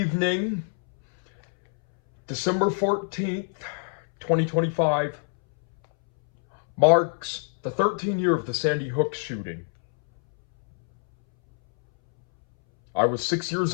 December 14th, 2025, marks the 13th year of the Sandy Hook shooting. I was 6 years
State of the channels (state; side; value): silent; right; 62 dB below the other